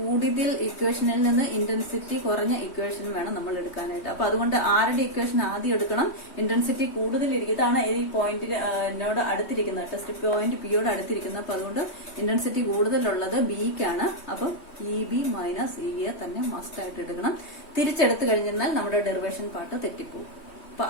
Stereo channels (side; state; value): right; late; 3.1 ms